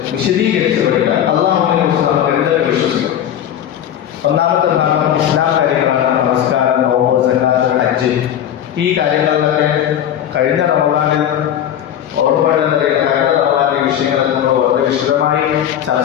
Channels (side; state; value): right; quieter; 10.3 dB